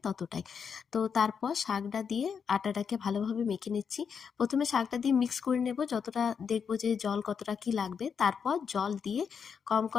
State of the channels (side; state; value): right; quieter; 6.6 dB